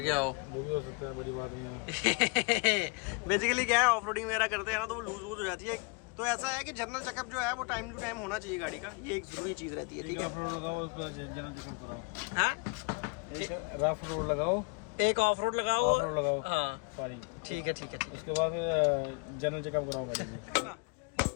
हो, वो भी हो सकता है, बड़ी बात नहीं है। बेसिकली क्या है, ऑफ रोडिंग वगैरह करते हैं ना तो वो लूज हो जाती है। तो ऐसा है कि जनरल चेकअप जो है वो टाइम टू टाइम होना चाहिए गाड़ी का, ये एक जरूरी चीज रहती है। ठीक है, जनरल चेकअप कराओ। हाँ, रफ रोड लगाओ, एक ऑफ रोड लगाओ, हाँ सॉरी, ठीक है। उसके बाद जनरल चेकअप कराओ गाड़ी की।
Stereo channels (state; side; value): quieter; right; 31.2 dB